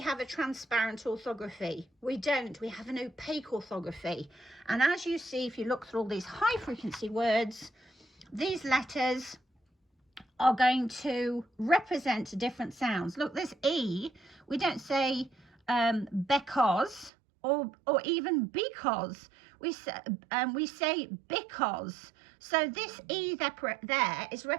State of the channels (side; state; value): left; drops out; at 17.1 s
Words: a transparent orthography. We don't, we have an opaque orthography. And as you see, if you look through all these high frequency words, these letters are going to represent different sounds. Look, this E, we don't say because or even because. We say because. So this E there is